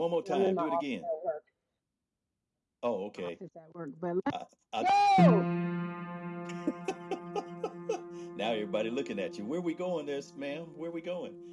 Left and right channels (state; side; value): identical; both; correlation 1.00